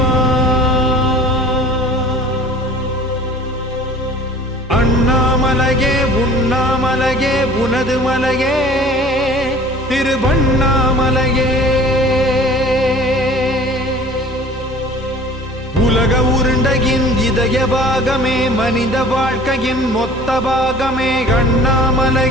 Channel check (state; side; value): normal; both; correlation 0.47